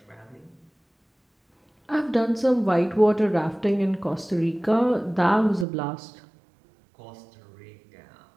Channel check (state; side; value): drops out; left; at 5.7 s